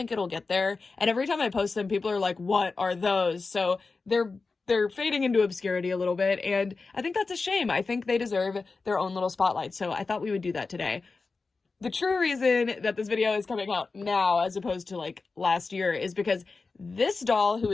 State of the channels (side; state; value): right; quieter; 4.1 dB